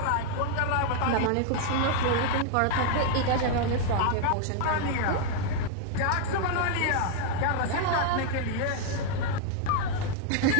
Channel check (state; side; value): different; both; correlation 0.00